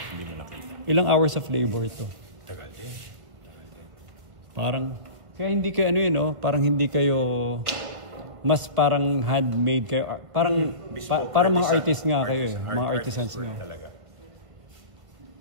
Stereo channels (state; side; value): late; left; 1.6 ms